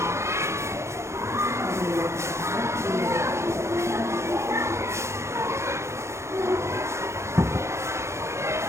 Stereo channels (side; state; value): left; late; 0.13 ms